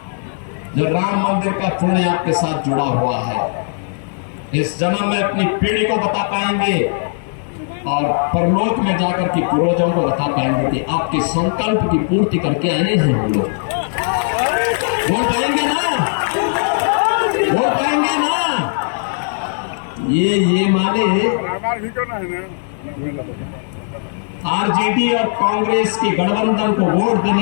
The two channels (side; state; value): right; silent; digital silence